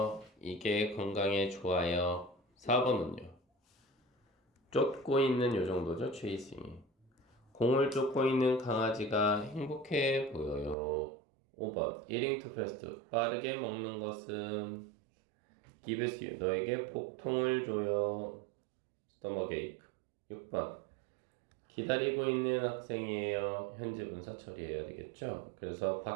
이게 건강에 좋아요. 4번은요 쫓고 있는 요 정도죠. chasing. 공을 쫓고 있는 강아지가 행복해 보여요. 5번 eating too fast 빠르게 먹는 것은 gives you 너에게 복통을 줘요. stomach ache. 6번 기다리고 있는 학생이에요. 현재 분사 처리해야 되겠죠. 그래서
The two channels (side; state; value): left; drops out; at 10.8 s